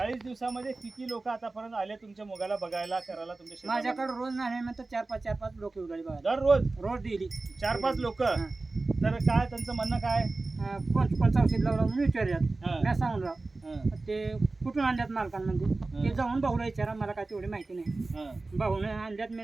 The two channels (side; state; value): left; quieter; 3.4 dB